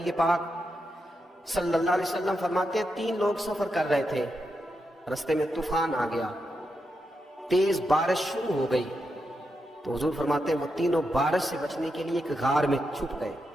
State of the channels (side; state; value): both; normal; correlation 0.86